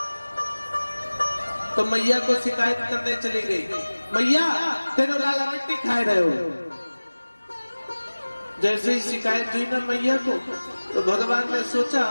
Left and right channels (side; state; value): both; inverted; correlation -1.00